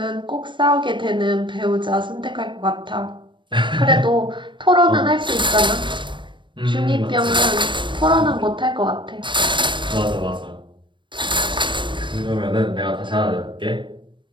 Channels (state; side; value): late; left; 0.23 ms